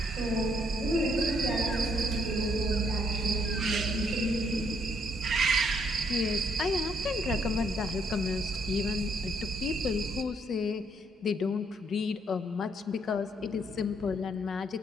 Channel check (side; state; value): both; normal; correlation 0.70